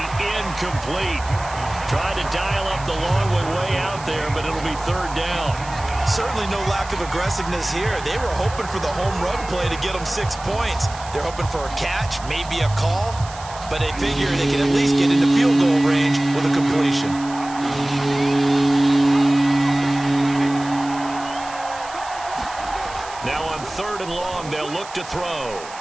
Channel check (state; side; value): noise; right; hiss, 16 dB below the sound